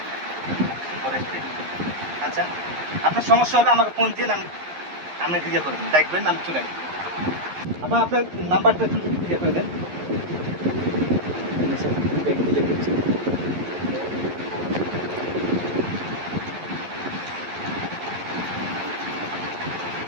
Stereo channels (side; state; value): left; late; 11 ms